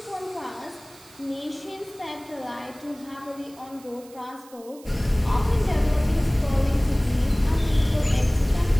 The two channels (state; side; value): noise; right; hiss, 23 dB below the sound